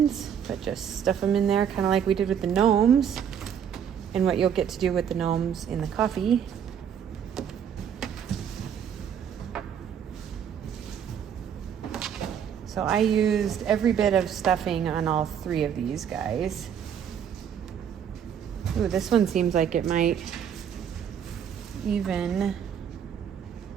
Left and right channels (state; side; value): quieter; left; 8.4 dB